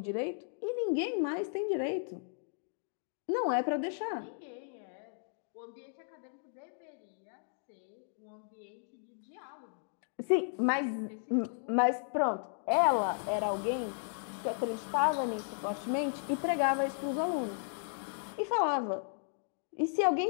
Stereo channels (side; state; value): right; silent; digital silence